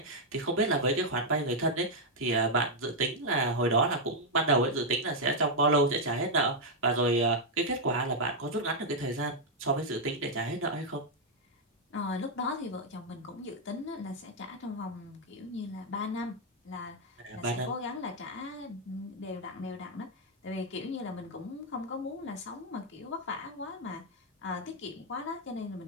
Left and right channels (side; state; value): both; normal; correlation -0.01